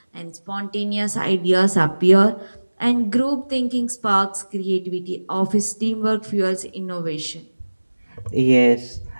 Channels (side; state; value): both; inverted; correlation -1.00